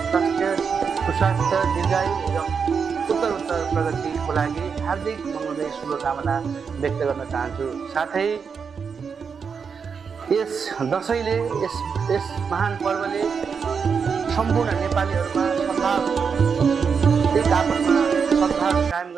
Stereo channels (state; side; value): quieter; left; 6.1 dB